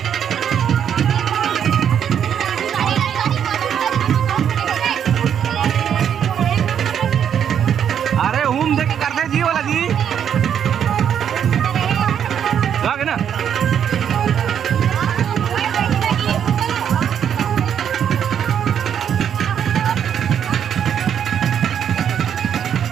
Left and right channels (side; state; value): left; quieter; 8.7 dB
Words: अरे हूम देख करते जी वाला जी लागे ना।